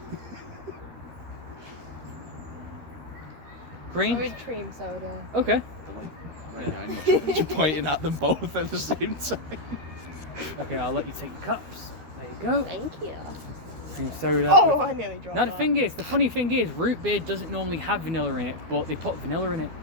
Cream? With cream soda. Okay. You're pointing at them both at the same time. Okay, I'll let you take your cups. There you go. Thank you. Cream soda. Oh, I nearly dropped Now that. the funny thing is, root beer doesn't normally have vanilla in it, but they put vanilla in it.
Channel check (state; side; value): late; left; 13 ms